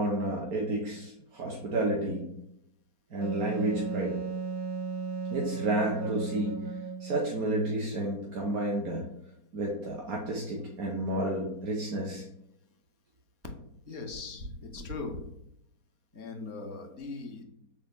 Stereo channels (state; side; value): late; left; 4.3 ms